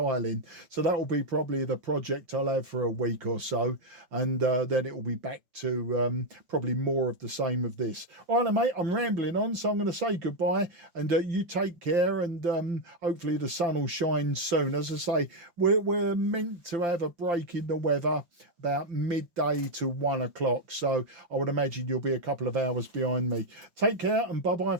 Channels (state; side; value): late; left; 5.9 ms